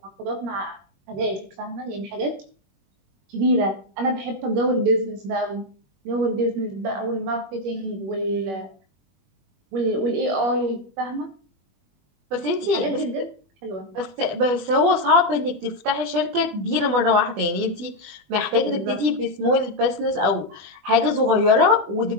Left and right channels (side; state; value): left; late; 20 ms